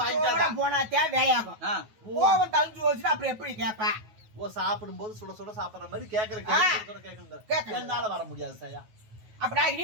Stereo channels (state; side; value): late; left; 9.3 ms